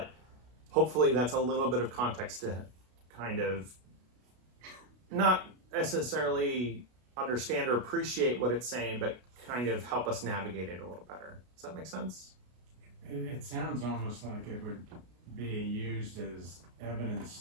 hopefully that's a little bit of context to kind of not necessarily understand or appreciate what it's saying, but kind of help us navigate it a little better. Does that make sense? It sounds almost like it would be used as evidence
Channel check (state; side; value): late; left; 33 ms